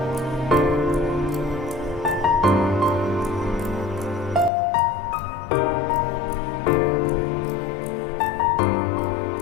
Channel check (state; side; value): drops out; right; at 4.5 s